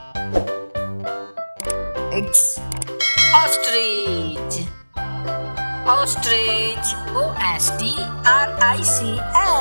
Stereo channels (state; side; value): inverted; both; correlation -1.00